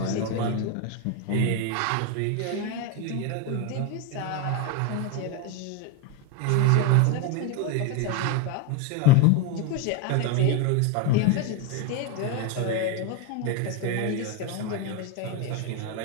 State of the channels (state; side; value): different; both; correlation 0.02